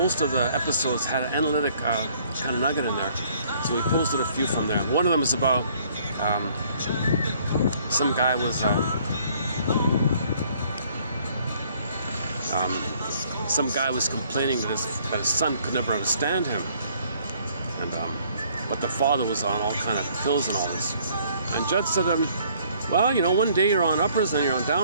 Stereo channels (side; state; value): both; inverted; correlation -0.61